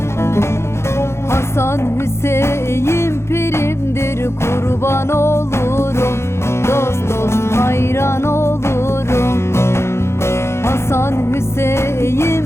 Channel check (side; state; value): right; late; 0.13 ms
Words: Hasan Hüseyin pirimdir, kurban olurum, dost dost hayran olurum. Hasan Hüseyin